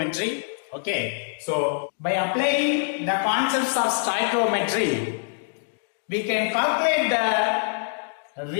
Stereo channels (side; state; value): right; silent; digital silence